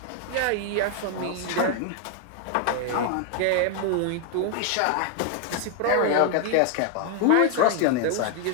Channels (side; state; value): both; different; correlation 0.00